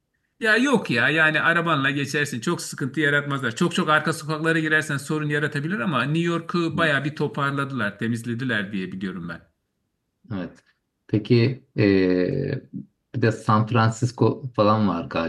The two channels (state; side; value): identical; both; correlation 1.00